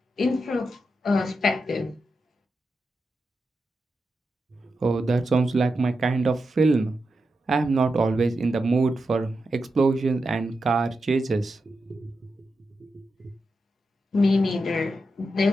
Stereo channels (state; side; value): normal; both; correlation 0.88